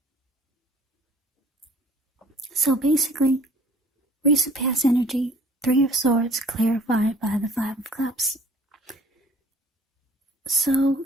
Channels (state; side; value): normal; both; correlation 0.53